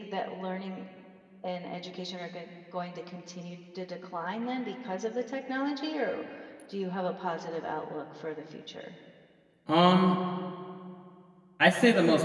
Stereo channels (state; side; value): identical; both; correlation 1.00